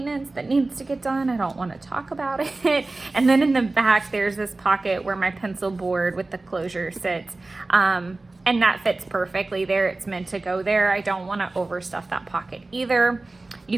that needs to get done. I don't want to talk about it. And then in the back, there's this pocket where my pencil board with the closure sits. And that fits perfectly there. It's meant to go there. I don't want to overstuff that pocket either.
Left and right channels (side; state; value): left; quieter; 3.2 dB